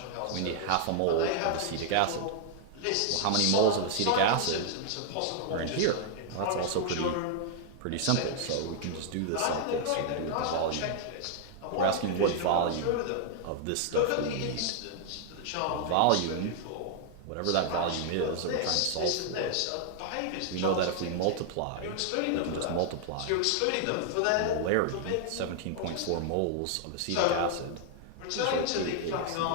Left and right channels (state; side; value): different; both; correlation -0.01